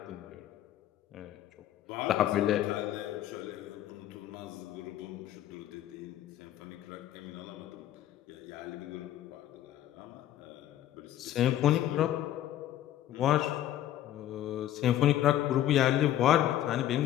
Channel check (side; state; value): right; quieter; 12.4 dB